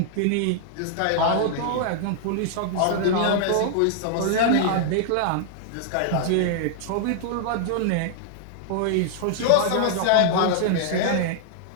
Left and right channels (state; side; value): different; both; correlation -0.01